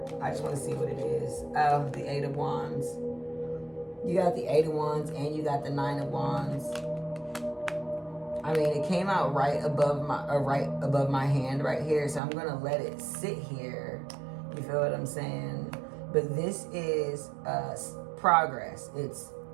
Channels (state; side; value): drops out; left; at 12.2 s